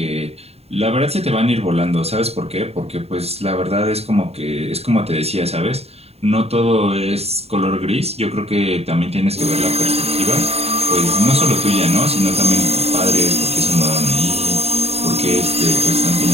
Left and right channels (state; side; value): late; left; 0.30 ms